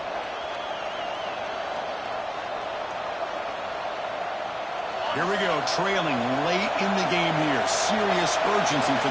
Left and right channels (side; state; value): both; identical; correlation 1.00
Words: Here we go, trailing late in the game here. Serious urgency for